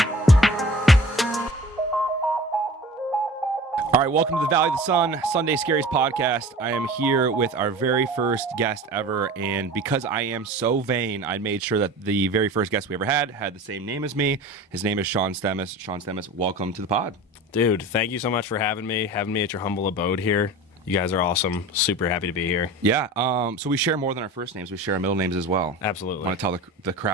All right, welcome to the Valley of the Sun, SunDay Scaries podcast. I am here with our very first guest ever, and because I am so vain, I made sure that the very first guest we ever had the same name as me. His name is Sean Stemas. Sean Stemas, welcome to the pod. Dude, thank you so much for having me at your humble abode here. You guys are awesome. Super happy to be here. Yeah, so we share more than our first names. We share our middle names as well. Absolutely. Want to tell the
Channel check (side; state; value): both; normal; correlation 0.38